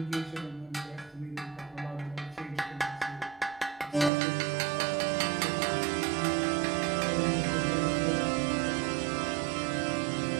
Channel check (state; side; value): drops out; left; at 4.1 s